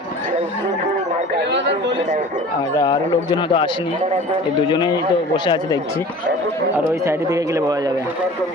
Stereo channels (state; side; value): normal; both; correlation 0.42